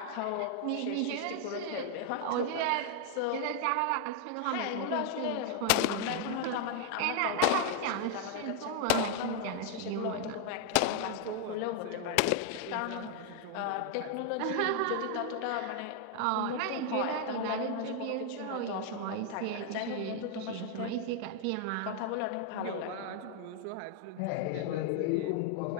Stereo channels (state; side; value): different; both; correlation 0.00